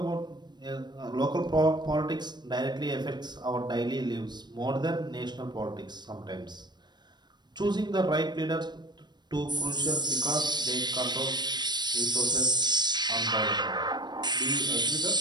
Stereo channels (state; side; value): late; left; 0.21 ms